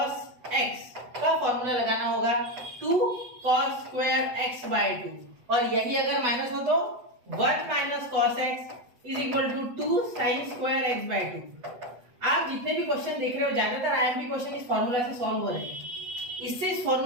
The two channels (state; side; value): late; left; 8.2 ms